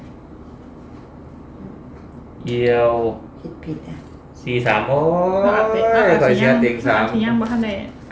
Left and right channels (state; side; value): identical; both; correlation 1.00